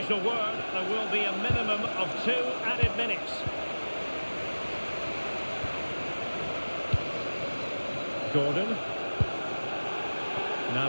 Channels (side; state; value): both; inverted; correlation -1.00